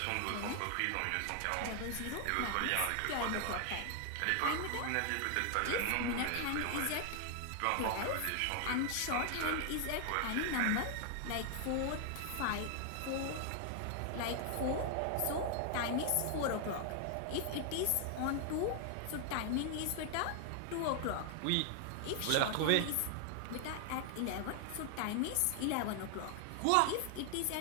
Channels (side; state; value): both; different; correlation 0.00